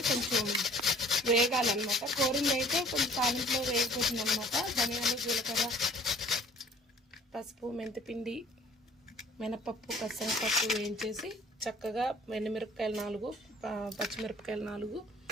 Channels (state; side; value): normal; both; correlation 0.53